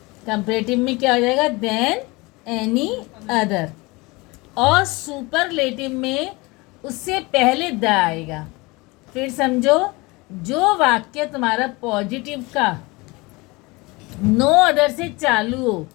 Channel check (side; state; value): right; quieter; 24.3 dB